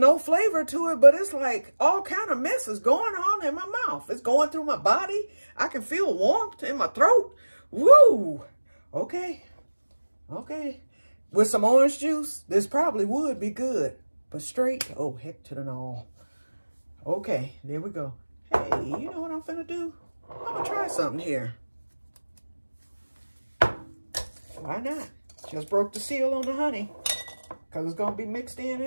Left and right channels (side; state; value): both; inverted; correlation -1.00